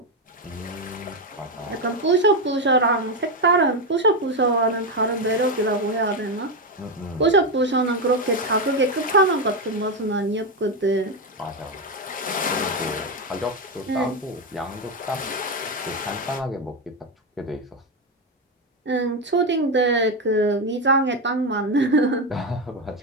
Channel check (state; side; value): normal; both; correlation 0.09